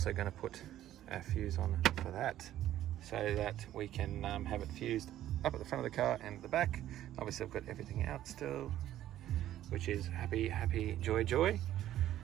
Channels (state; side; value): quieter; left; 12.7 dB